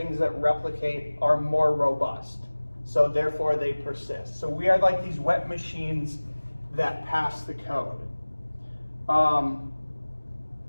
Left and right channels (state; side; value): inverted; both; correlation -1.00